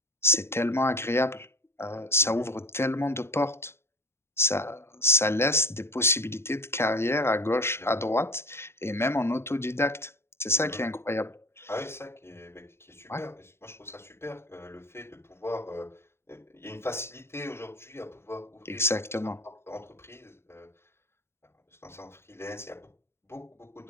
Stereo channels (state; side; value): late; right; 0.12 ms